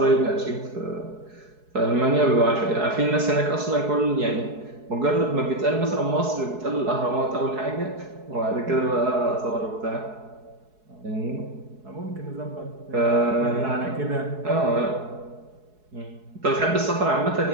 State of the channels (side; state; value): left; late; 4.7 ms